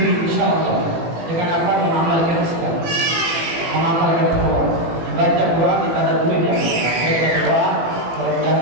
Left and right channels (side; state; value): left; late; 18 ms